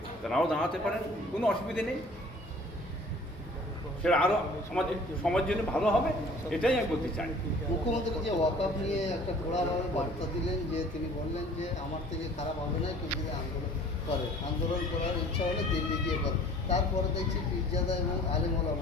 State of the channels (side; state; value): both; normal; correlation 0.50